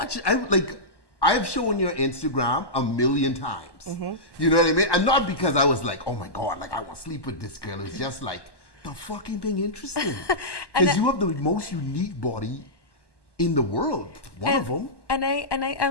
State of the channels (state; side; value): late; right; 1.1 ms